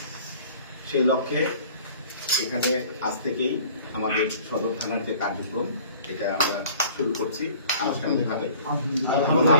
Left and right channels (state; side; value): inverted; both; correlation -0.49